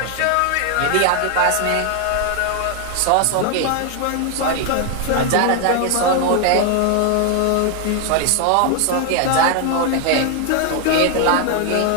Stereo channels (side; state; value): both; different; correlation 0.01